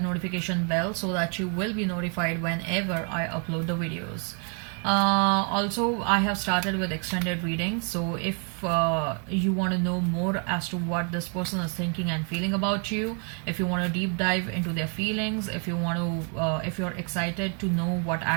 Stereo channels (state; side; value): quieter; left; 37.8 dB